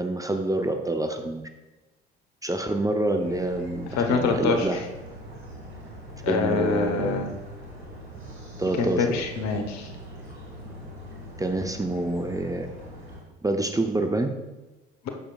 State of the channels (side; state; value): both; normal; correlation 0.54